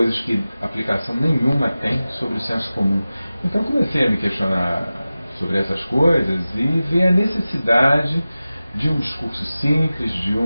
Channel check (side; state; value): both; inverted; correlation -0.96